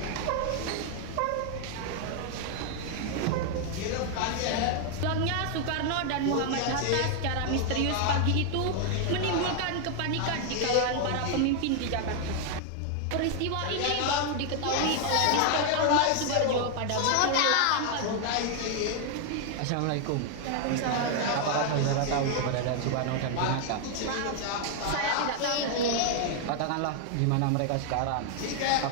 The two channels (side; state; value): both; different; correlation 0.00